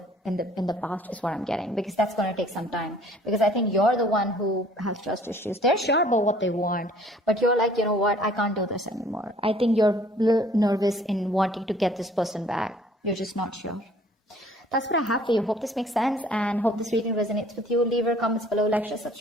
the past, is what I'm getting, because that's going to take some time. Because I think you're the one who has trust issues. They're sure about what they want, but you're like, you know what, I can't do this anymore. I think you're a little nervous in wanting to get this person back. You're just not sure. That's what I have for you. Hope this makes sense, and hope this reading resonates with you. Leave your comments below, like, share,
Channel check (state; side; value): normal; both; correlation 0.56